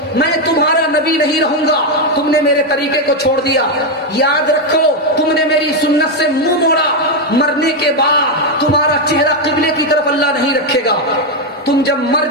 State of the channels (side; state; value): both; normal; correlation 0.04